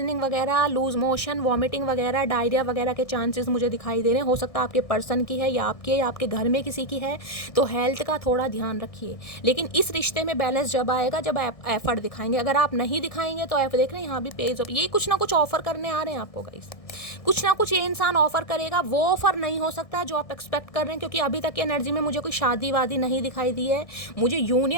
वगैरह, लूज मोशन, वॉमिटिंग वगैरह, डायरिया वगैरह के चांसेस मुझे दिखाई दे रहे हैं। हो सकता है आपके पर्सन की है या आपके घर में किसी की है, तो हेल्थ का थोड़ा ध्यान रखिए। लेकिन इस रिश्ते में बैलेंस जब आएगा जब आप एफर्ट दिखाएंगे। अगर आप नहीं दिखाएंगे तो आप देख रहे हैं यहाँ भी पेज ये कुछ ना कुछ ऑफर करने आ रहे हैं आपको गाइस, कुछ ना कुछ ये इंसान ऑफर करेगा। वो ऑफर नहीं हो सकता है जो आप एक्सपेक्ट कर रहे हैं, क्योंकि अभी तक की एनर्जी में मुझे कोई शादी वादी नहीं दिखाई दी है, मुझे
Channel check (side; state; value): right; late; 1.6 ms